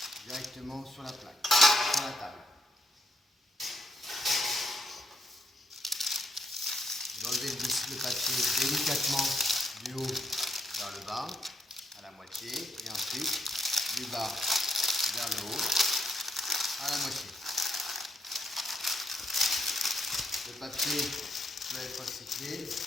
directement sur la plaque, sur la table. Vous enlevez le papier délicatement du haut vers le bas, à la moitié, et ensuite du bas vers le haut, à la moitié. Le papier peut être recyclé, il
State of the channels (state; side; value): normal; both; correlation 0.77